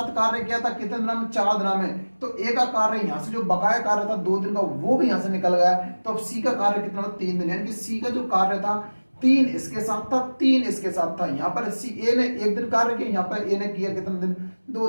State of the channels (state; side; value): inverted; both; correlation -1.00